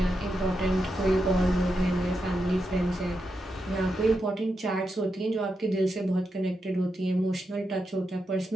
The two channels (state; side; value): normal; both; correlation 0.86